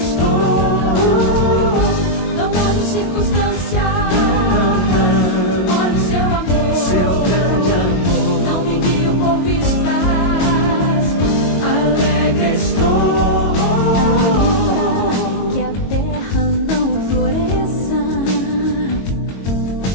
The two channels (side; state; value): right; late; 22 ms